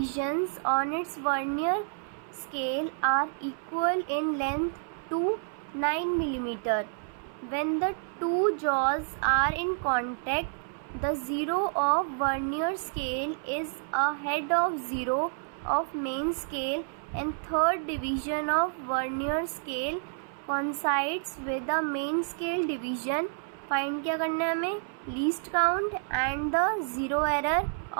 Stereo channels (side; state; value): left; silent; 58 dB below the other